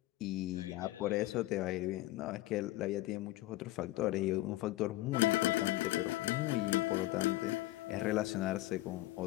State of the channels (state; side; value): quieter; right; 17.8 dB